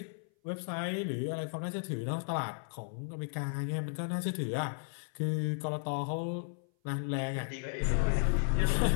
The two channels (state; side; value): silent; right; 55 dB below the other